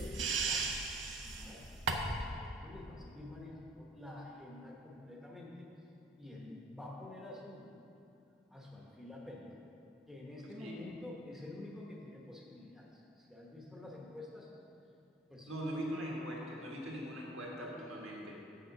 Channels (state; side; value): normal; both; correlation 0.49